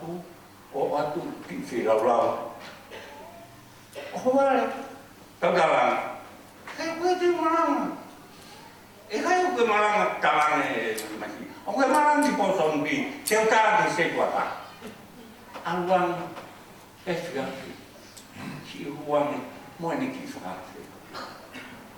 waktu ki firau. Oh wala. Tagalang. Kaya pwede marang. Kayo ke marang talang masih. Oh ke marang di poson bi. Teuta di setuata. Awang FGP. Si huang mo ni kisah.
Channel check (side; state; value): both; identical; correlation 1.00